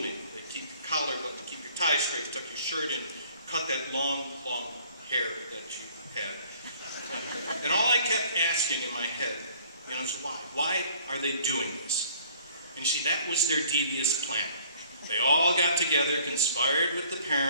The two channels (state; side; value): inverted; both; correlation -0.56